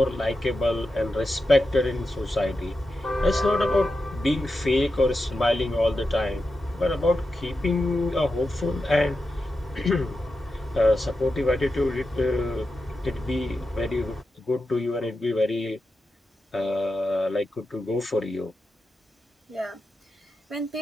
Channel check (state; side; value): normal; both; correlation 0.90